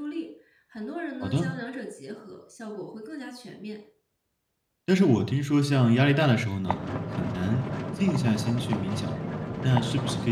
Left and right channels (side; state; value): both; identical; correlation 1.00